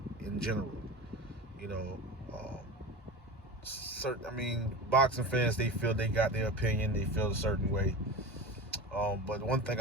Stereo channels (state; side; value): normal; both; correlation 0.30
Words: In general, you know, boxing fans, they feel they got their opinion. They feel a certain way. But one thing